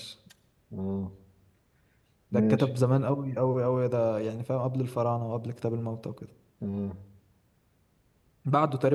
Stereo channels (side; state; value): both; identical; correlation 1.00